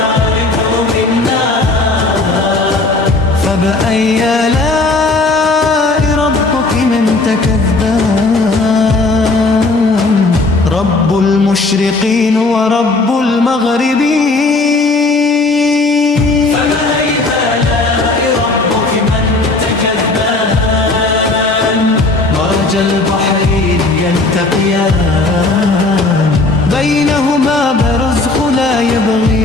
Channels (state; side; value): quieter; right; 3.3 dB